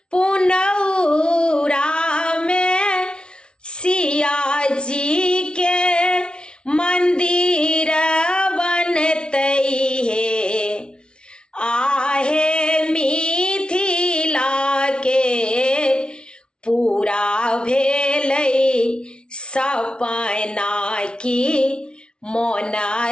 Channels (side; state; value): right; late; 0.056 ms